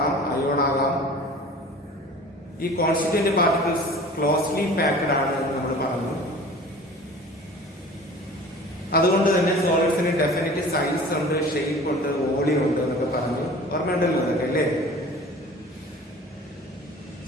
അയോൺ ആകാം, ഈ കോൺസ്റ്റിറ്റ്യൂവന്റ് പാർട്ടിക്കിൾസ് ക്ലോസ്ലി പാക്ഡ് ആണ് എന്ന് നമ്മൾ പറഞ്ഞു. അതുകൊണ്ട് തന്നെ സോളിഡ്സിന് ഡെഫിനറ്റ് സൈസ് ഉണ്ട്, ഷേപ്പ് ഉണ്ട്, വോളിയം ഉണ്ട് എന്നൊക്കെ പറഞ്ഞു. ഓർമ്മയുണ്ടല്ലോ അതൊക്കെ അല്ലേ?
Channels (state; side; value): normal; both; correlation 0.42